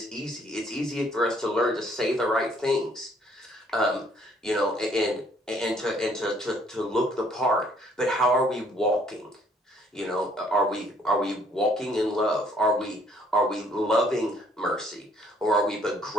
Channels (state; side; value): normal; both; correlation 0.63